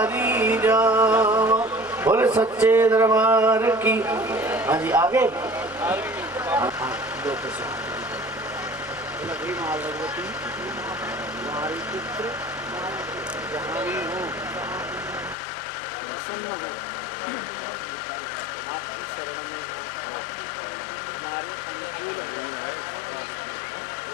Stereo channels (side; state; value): right; drops out; at 15.4 s